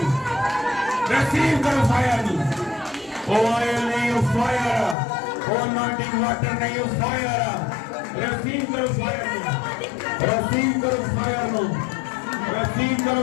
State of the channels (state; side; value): drops out; right; at 5.0 s